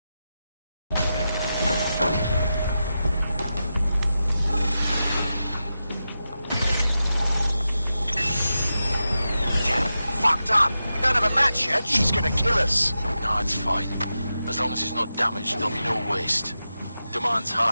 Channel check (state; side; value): inverted; both; correlation -0.90